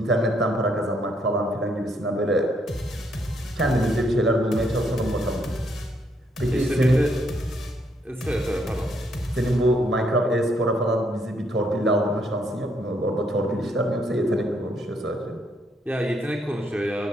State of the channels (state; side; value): normal; both; correlation 0.73